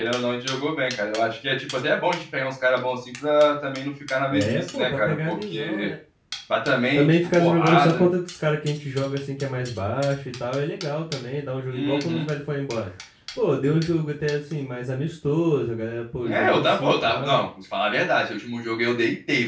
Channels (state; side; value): identical; both; correlation 1.00